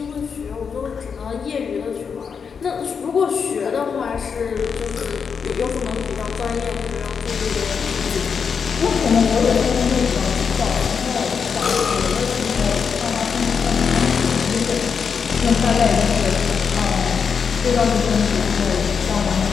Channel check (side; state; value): right; quieter; 6.2 dB